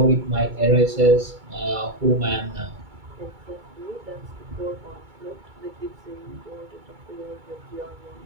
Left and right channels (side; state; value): left; late; 2.2 ms